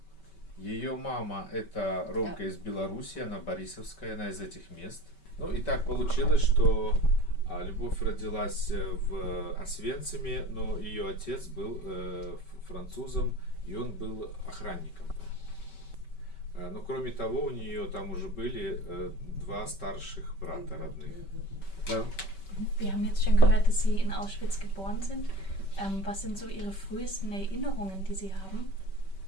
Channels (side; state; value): right; late; 5.2 ms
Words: Ее мама это Ромка из Беларуси, она борисовская, она из этих мест. Ну и так получилось, что Любовь родилась в Освенциме, но ее отец был французом, и он был охранником. Но кроме того, у нее там уже были два старших брата родных. Да. Wir haben jetzt schon gehört, dass Sie in Auschwitz geboren sind. Was sind so Ihre frühesten Erinnerungen, die Sie haben?